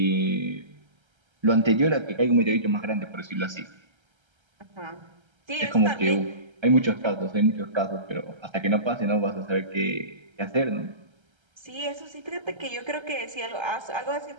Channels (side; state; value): left; late; 1.3 ms